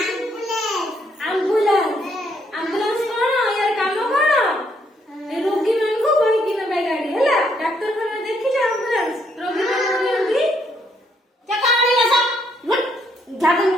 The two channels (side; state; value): both; normal; correlation 0.72